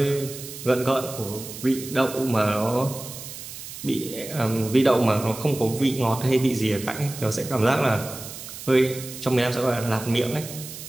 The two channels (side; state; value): right; noise; hiss, 12 dB below the sound